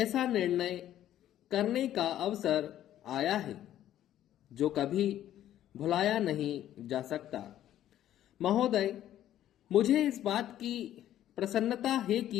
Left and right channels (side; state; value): right; quieter; 12.1 dB